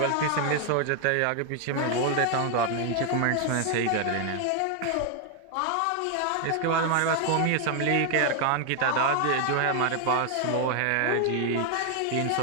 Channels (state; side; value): different; both; correlation 0.00